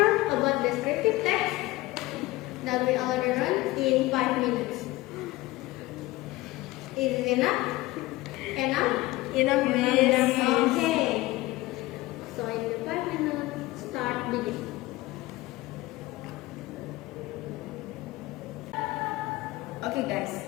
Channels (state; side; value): quieter; right; 19.1 dB